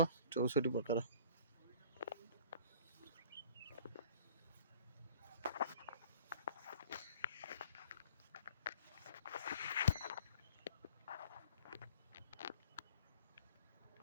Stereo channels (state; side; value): inverted; both; correlation -0.48